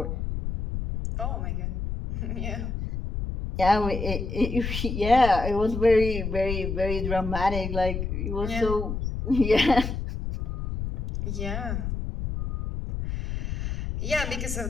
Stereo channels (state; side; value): noise; left; rumble, 4 dB below the sound